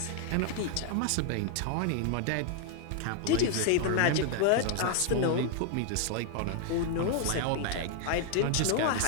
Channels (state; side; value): different; both; correlation 0.00